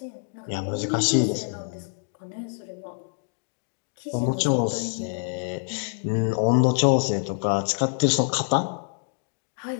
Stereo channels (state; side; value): silent; right; digital silence